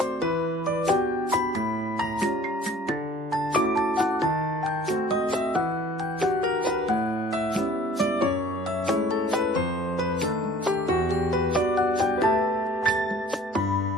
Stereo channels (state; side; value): normal; both; correlation 0.51